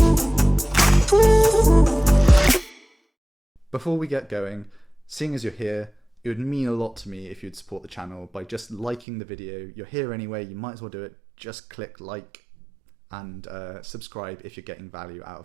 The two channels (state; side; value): drops out; left; at 9.1 s